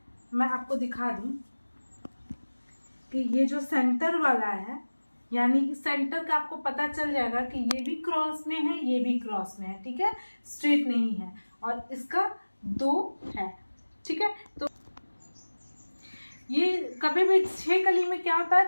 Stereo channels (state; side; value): inverted; both; correlation -1.00